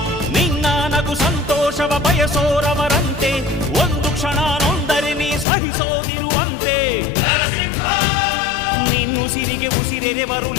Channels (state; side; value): drops out; right; at 5.5 s